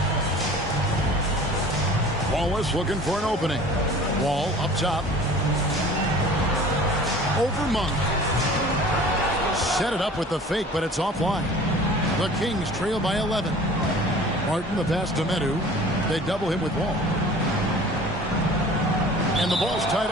Wallace looking for an opening. Wall up top. Over Monk. Set it up with the fake, but it's offline. The Kings trail by 11. Martin the pass to Medu. They double him with Wall. And the ball's tied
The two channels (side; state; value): both; normal; correlation 0.45